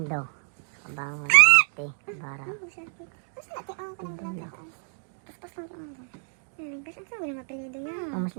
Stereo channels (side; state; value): left; silent; 60 dB below the other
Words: Abangon, bante, bara. Mas